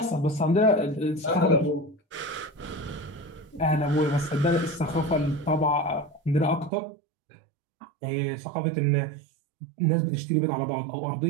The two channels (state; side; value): drops out; left; at 6.7 s